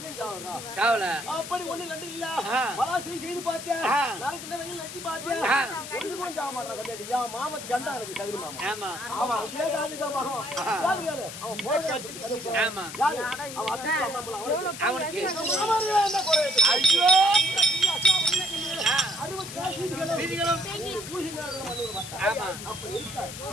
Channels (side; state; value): left; noise; hiss, 10 dB below the sound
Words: சாவறா. சாவல அப்படி ஒண்ணு ரெண்டு இல்ல ஆ. பலாசையும் செய்து பார்த்தேன் ஆ. நாளைக்கு இந்த வெயில் நச்சு பார்த்தேன் ஆ. ஒண்ணு கூட சாவ மாட்டான் கம்மியாட்டி என் மாமா கண்டா இருக்கு சகரி மாமா ஆமா அவன் அப்படியே காதுக்கா மகன் யாரு கேளு அவன் போட்டு கட்டிட்டு ஆமா யாரு அவன் அத்தை அம்மா அவனுக்கு என்ன குறை ஐயோ ஆ. 60 சீதிகளும் வீதிகளும் பூசி நேரம் மண்ணூர் மாட்டான் ஆமா அப்ப இருக்கா